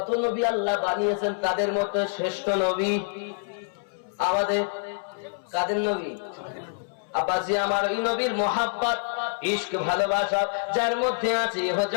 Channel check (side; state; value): right; silent; 61 dB below the other